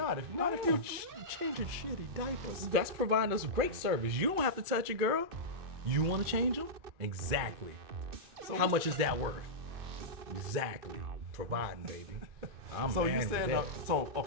If you're changing shitty diapers. That's providing us great service. You don't have to touch it, girl. You want to change them? Exactly. So how much is that worth? Exactly. Providing, baby. I'm so man you with said that.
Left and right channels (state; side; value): late; left; 2.5 ms